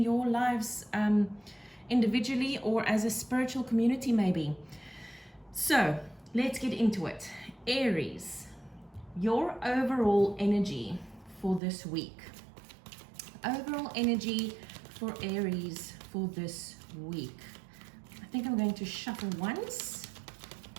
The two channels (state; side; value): drops out; left; at 11.6 s